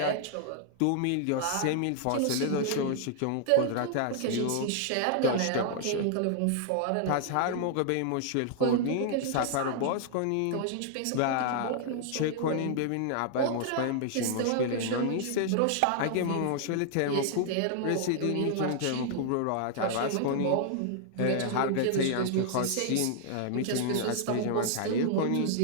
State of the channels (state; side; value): different; both; correlation -0.01